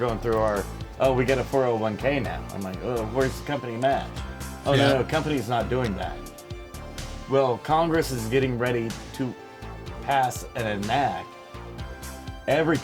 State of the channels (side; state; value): both; identical; correlation 1.00